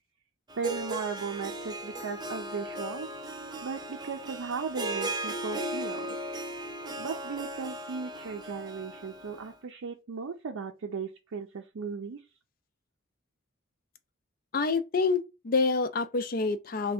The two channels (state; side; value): normal; both; correlation -0.02